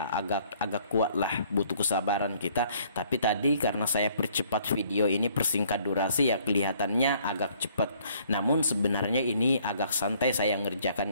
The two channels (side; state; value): both; inverted; correlation -0.61